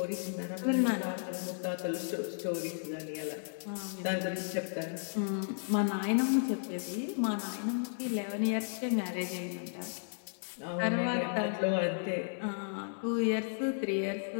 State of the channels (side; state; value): right; silent; 55 dB below the other